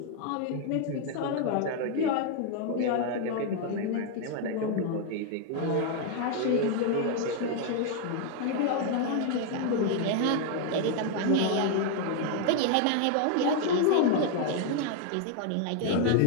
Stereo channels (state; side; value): different; both; correlation 0.00